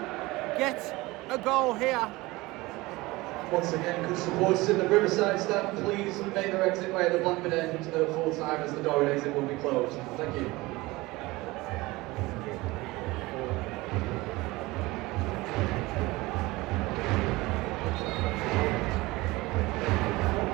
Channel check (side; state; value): left; quieter; 21.0 dB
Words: get a goal here? Once again, could supporters in the Riverside stand please make their exit way at the Blackburn end at full time, as the door and exit will be closed. Thank you.